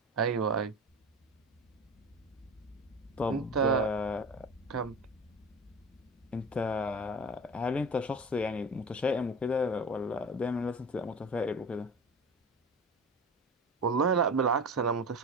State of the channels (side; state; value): both; normal; correlation 0.32